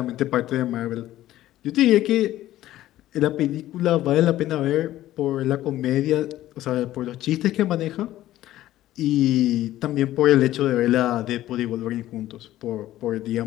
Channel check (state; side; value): quieter; right; 14.3 dB